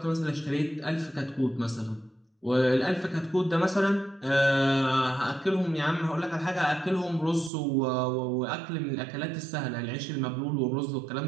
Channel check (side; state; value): left; drops out; at 7.5 s